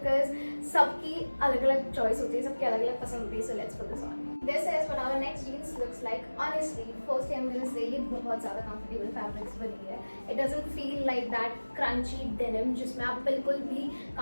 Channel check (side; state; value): both; inverted; correlation -1.00